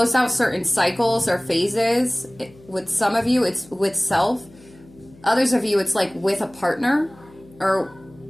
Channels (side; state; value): left; noise; hum, 25 dB below the sound